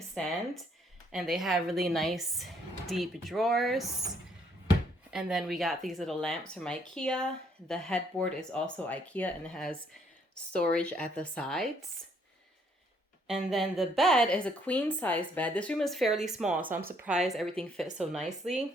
and they have really nice deep drawers. And then we got these little lamps from Ikea. The headboard is also Ikea and it has storage at the sides. And then the bed is a queen size bed. This room is fairly small, so I'm surprised everything fits so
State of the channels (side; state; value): both; normal; correlation 0.67